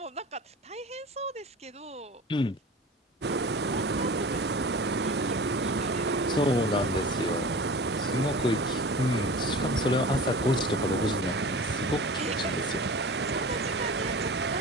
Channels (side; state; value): both; normal; correlation 0.36